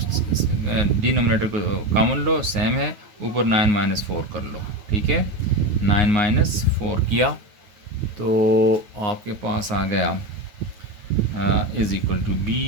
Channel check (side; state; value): left; late; 9.2 ms